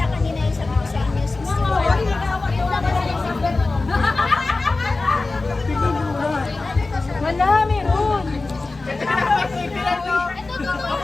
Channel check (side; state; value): right; quieter; 3.5 dB